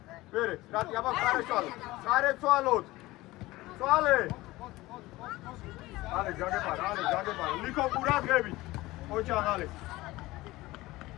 მერე, რატი, აბა ხარეცვალოთ. წვალე. ალე, ჯაგებარა. ლიკო ყურადღებით. ოჩაღალე.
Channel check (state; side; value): quieter; right; 19.0 dB